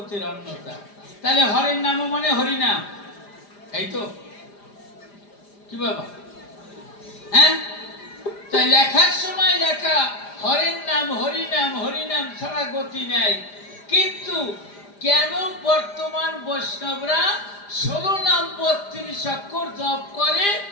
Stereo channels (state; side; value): late; right; 4.9 ms